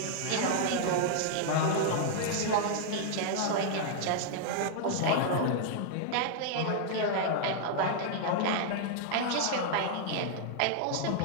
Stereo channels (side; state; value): both; different; correlation -0.01